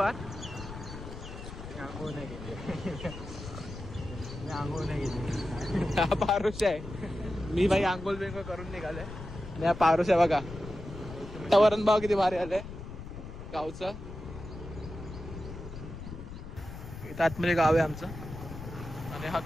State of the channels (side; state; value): left; noise; rumble, 11 dB below the sound